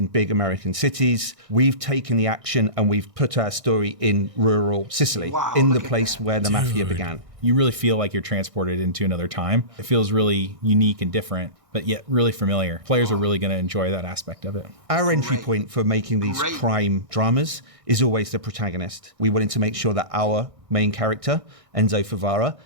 big American cities. We've taken the action and we've put our story in rural Sicily, in the place where the Mafia began. You really feel like you're transported into another time. It feels really unique and different, but yet really familiar. Players are really going to enjoy that aspect of it. Our entry point for making these crime dramas is always the protagonist. We wanted to make sure that our main character, Enzo Favara,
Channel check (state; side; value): late; left; 1.6 ms